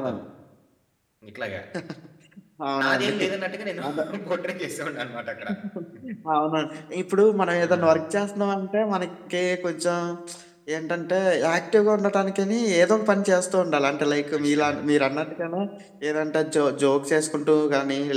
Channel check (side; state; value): both; identical; correlation 1.00